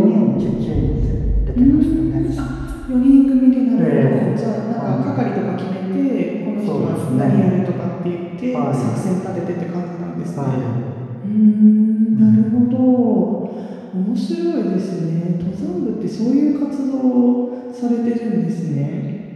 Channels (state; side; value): identical; both; correlation 1.00